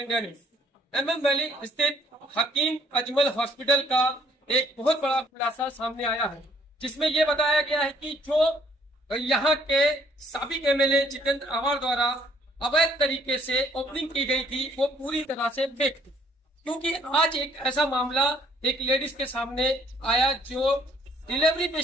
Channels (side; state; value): both; normal; correlation 0.63